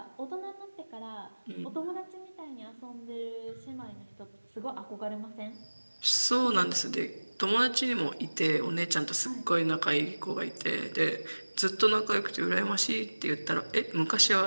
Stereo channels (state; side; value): inverted; both; correlation -1.00